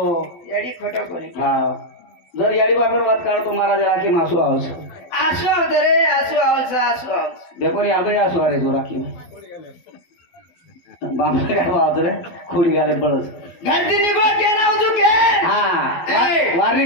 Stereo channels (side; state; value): right; late; 12 ms